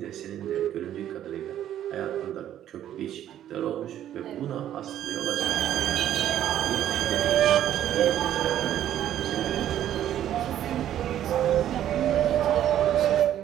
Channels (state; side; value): quieter; left; 11.3 dB